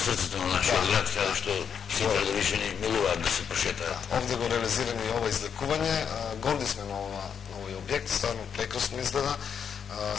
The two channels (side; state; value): right; quieter; 7.4 dB